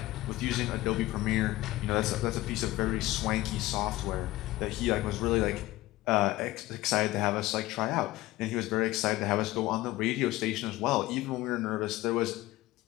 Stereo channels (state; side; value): quieter; right; 17.8 dB